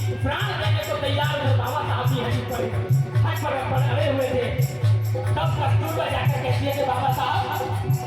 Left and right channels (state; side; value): identical; both; correlation 1.00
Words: प्राण देने को तैयार हुए। बाबा साहब भी हट पर अड़े हुए थे। तब कस्तूरबा जाकर कहती है कि बाबा साहब